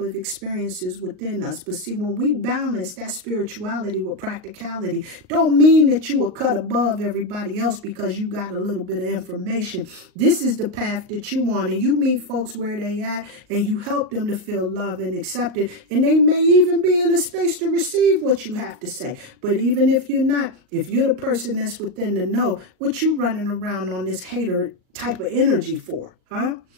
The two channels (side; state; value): left; late; 38 ms